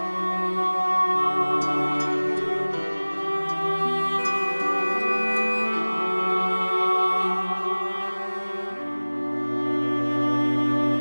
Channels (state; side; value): inverted; both; correlation -1.00